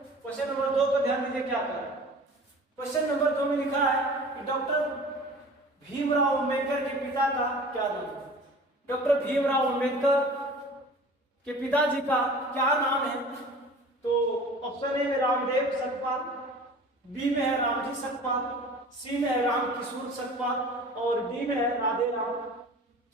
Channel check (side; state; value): both; normal; correlation 0.42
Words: क्वेश्चन नंबर 2 को ध्यान दीजिए क्या कर रहा है। क्वेश्चन नंबर 2 में लिखा है कि डॉक्टर भीमराव अंबेडकर के पिता का क्या नाम है। डॉक्टर भीमराव अंबेडकर के पिताजी का क्या नाम है? तो ऑप्शन ए में रामदेव सकपाल, बी में है रामजी सकपाल, सी में है रामकिशोर सकपाल और डी में है राधे राम